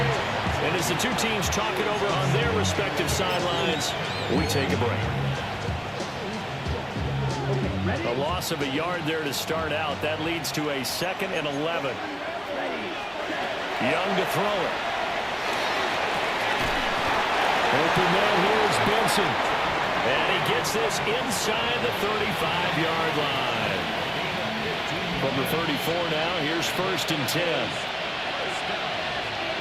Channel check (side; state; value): both; identical; correlation 1.00